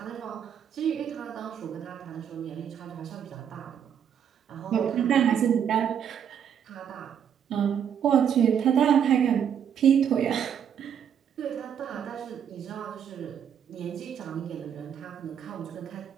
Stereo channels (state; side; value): quieter; left; 8.5 dB